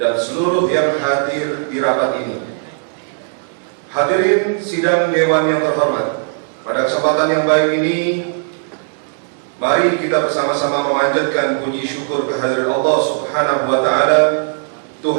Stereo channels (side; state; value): left; silent; digital silence